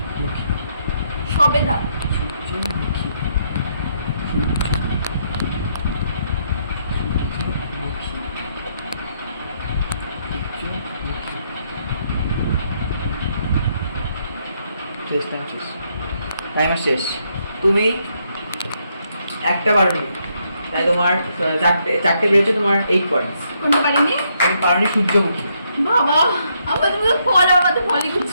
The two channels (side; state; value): both; inverted; correlation -0.75